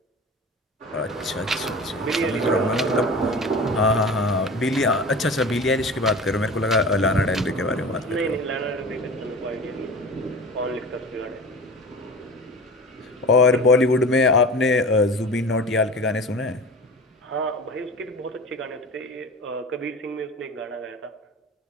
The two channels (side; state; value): both; normal; correlation 0.35